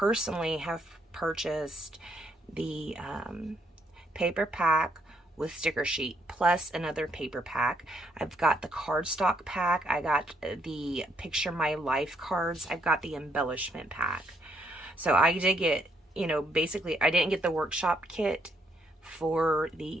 have purchased the paper pack with sticker sheet plus another paper pack. I've got the cardstock pack. I got the Picture My Life cards. I've got the embellishment pack. So I did get, you know, basically I didn't get the workshop kit for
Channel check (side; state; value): both; normal; correlation 0.72